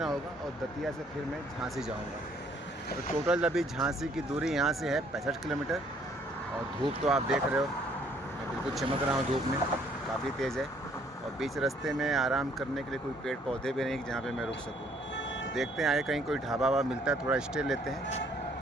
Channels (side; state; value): both; normal; correlation 0.64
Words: होगा और दतिया से फिर मैं झांसी जाऊँगा। तो टोटल अभी झांसी की दूरी यहाँ से है 65 किलोमीटर। और धूप तो आप देख रहे हो, मैं बिल्कुल चमक रहा हूँ धूप में, काफ़ी तेज़ है। और बीच रास्ते में आराम करने के लिए कोई पेड़ पौधे भी नहीं जहाँ पे मैं रुक सकूँ। तो देखते हैं आगे कहीं कोई ढाबा वाबा मिलता है, थोड़ा स्टे लेते हैं।